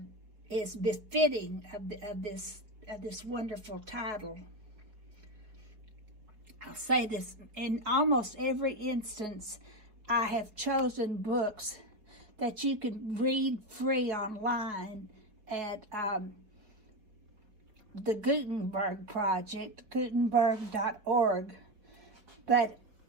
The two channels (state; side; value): late; left; 4.7 ms